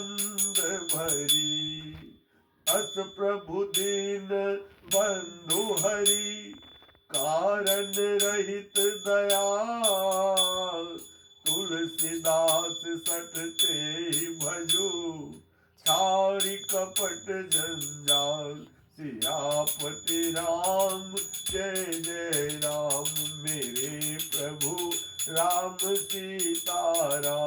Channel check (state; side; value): identical; both; correlation 1.00